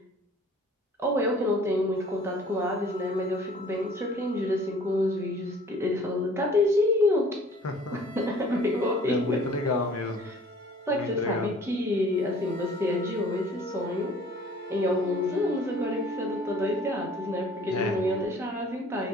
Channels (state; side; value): normal; both; correlation 0.51